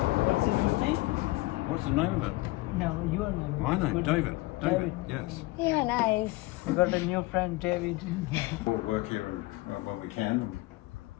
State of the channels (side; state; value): right; quieter; 21.2 dB